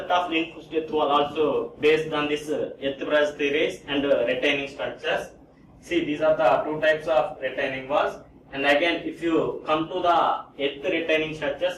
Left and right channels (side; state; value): both; identical; correlation 1.00